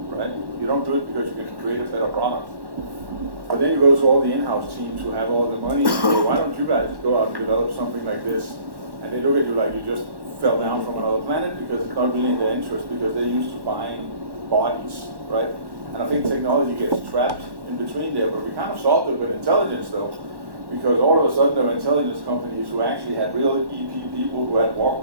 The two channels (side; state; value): left; late; 1.1 ms